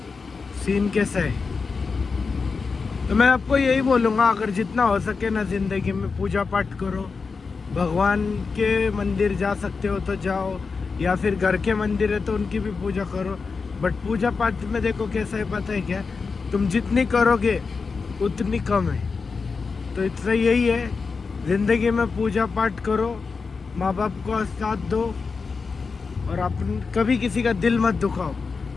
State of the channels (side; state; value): right; quieter; 4.8 dB